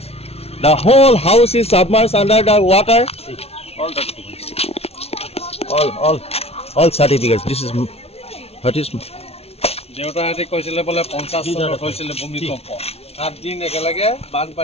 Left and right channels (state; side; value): late; right; 0.30 ms